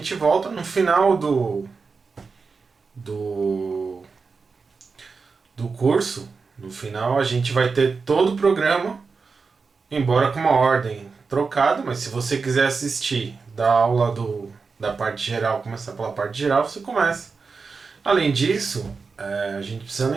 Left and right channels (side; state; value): left; quieter; 4.8 dB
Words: volta no final do, do curso. No final a gente vai ter todo o programa, embora com uma ordem trocada, mas se você quiser assistir da aula da parte geral, começar pela parte geral, você começa. Além disso, a gente precisa